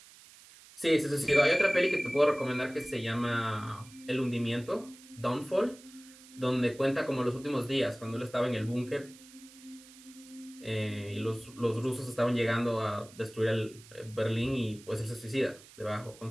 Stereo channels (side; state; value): right; noise; hiss, 21 dB below the sound